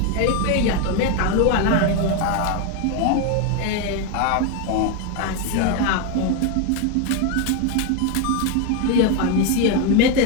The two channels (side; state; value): both; different; correlation 0.01